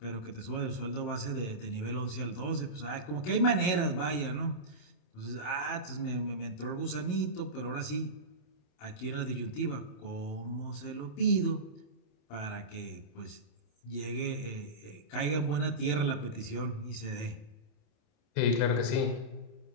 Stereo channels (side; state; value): right; late; 27 ms